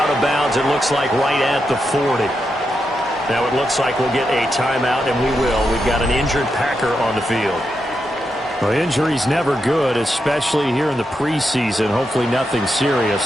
of bounds, it looks like, right at the 40. Now it looks like we'll get a timeout, and we will. We've got an injured Packer on the field. Well, injury's never good, especially here in the preseason. Hopefully nothing serious.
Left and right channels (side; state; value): both; normal; correlation 0.85